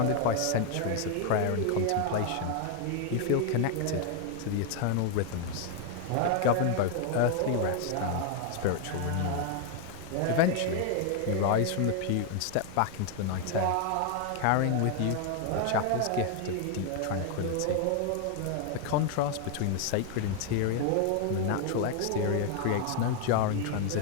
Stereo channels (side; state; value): both; different; correlation 0.00